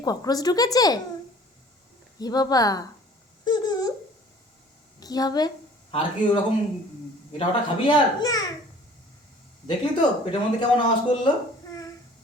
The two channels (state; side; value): normal; both; correlation 0.50